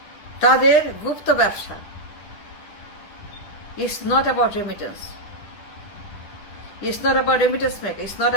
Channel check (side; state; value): right; late; 9.4 ms